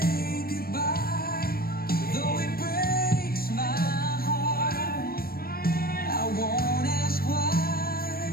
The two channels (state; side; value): late; right; 0.44 ms